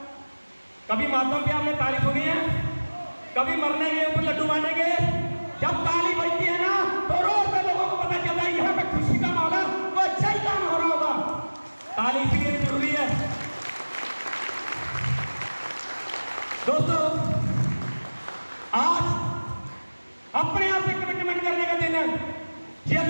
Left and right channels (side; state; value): both; inverted; correlation -1.00